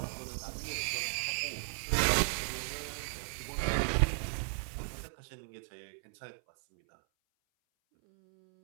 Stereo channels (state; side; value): silent; left; 54 dB below the other